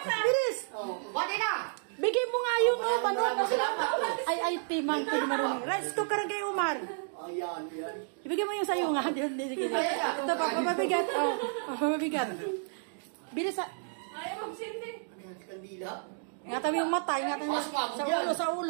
Bilis. Pwede na. Bigay mo nga yun, balot. Ay, timang ko marunong. Rice cooker kay Umar. Ayan. Ibigay mo yung sa'yo nga. Ito pa, mabigat. Mabigat. Bilis. Ayaw magsindi. Kandila. Ingatan mo yung mata. Ingatan mo. Sa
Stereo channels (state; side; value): silent; left; digital silence